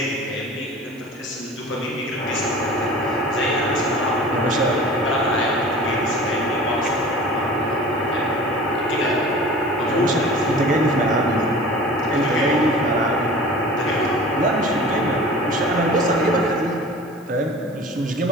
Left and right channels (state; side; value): noise; right; hiss, 28 dB below the sound